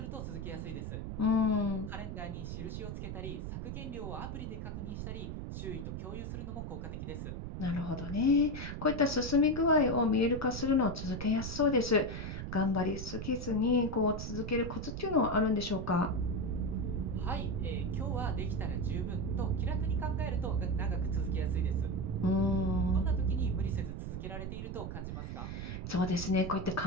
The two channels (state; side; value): noise; right; rumble, 6 dB below the sound